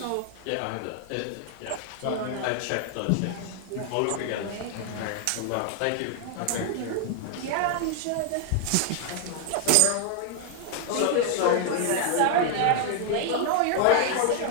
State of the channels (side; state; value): both; different; correlation 0.00